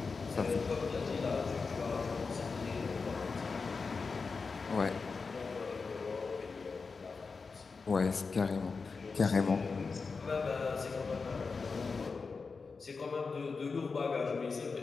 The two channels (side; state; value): right; quieter; 4.6 dB